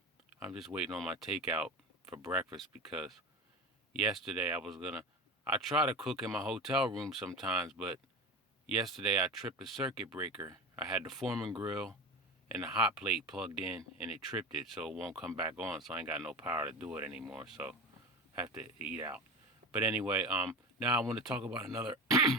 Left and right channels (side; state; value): both; normal; correlation 0.27